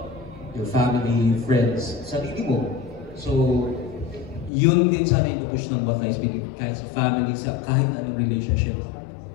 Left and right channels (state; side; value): drops out; right; at 4.5 s